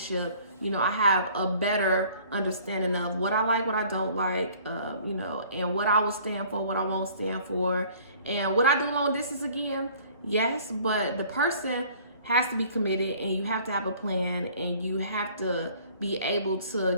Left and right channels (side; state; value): both; inverted; correlation -0.53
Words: I have a better understanding of what I like, what I don't like, and what I will stand for, what I won't stand for. And would I do long distance again? Yes, but the person has to be committed, and you have to have a plan, and you have to be able